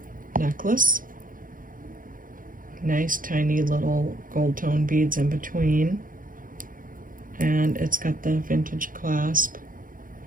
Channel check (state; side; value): late; left; 0.40 ms